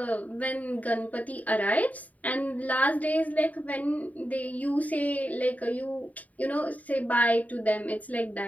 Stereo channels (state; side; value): late; right; 0.072 ms